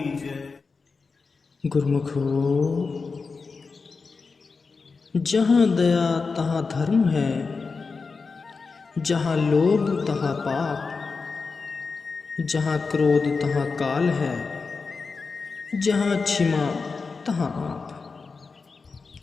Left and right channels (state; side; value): quieter; right; 4.6 dB